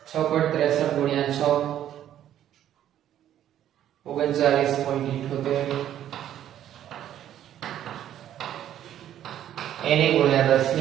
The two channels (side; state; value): left; quieter; 11.2 dB